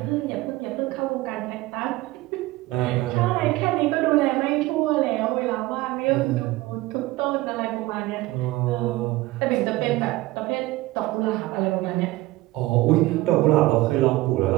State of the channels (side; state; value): left; quieter; 19.0 dB